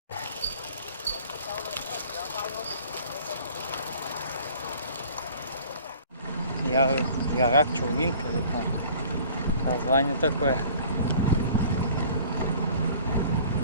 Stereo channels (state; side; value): inverted; both; correlation -0.49